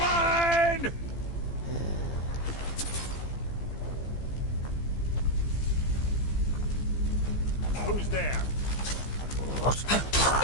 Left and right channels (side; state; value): right; late; 15 ms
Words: Who's there? Okay.